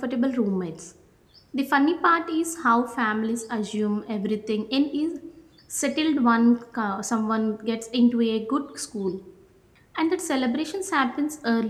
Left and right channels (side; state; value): both; identical; correlation 1.00